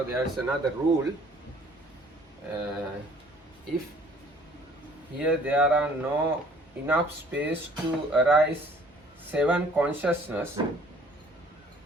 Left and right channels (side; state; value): both; normal; correlation 0.56